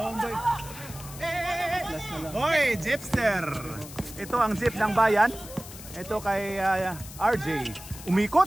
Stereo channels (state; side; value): noise; left; hiss, 15 dB below the sound